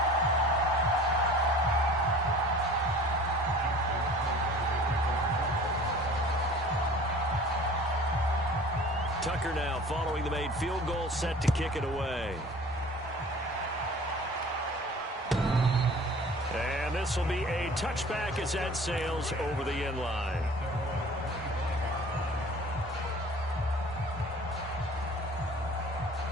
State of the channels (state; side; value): normal; both; correlation 0.46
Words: Tucker now following the made field goal, set to kick it away. And this will be a touchback as that sails over the end line.